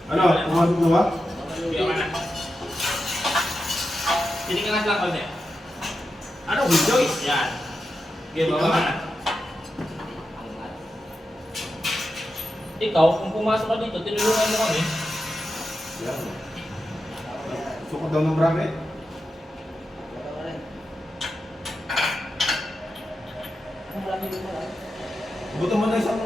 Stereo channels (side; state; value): both; normal; correlation 0.90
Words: Ano? Pumasok mo ba? Biyo ka na. Tinignan lang konti. Ano? Joyce? Yan. Biyo, baba ka na. Ikaw, kung pumasok ka dito, tinulungan mo kami. Yan. Sukot daw ng bracket. Buto mo na isang